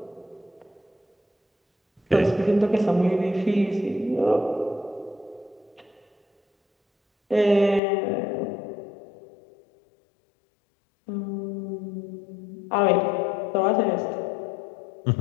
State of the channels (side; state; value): right; drops out; at 7.8 s